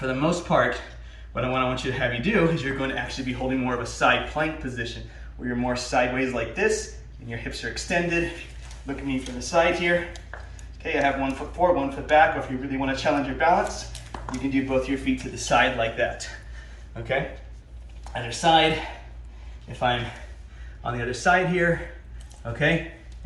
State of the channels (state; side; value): identical; both; correlation 1.00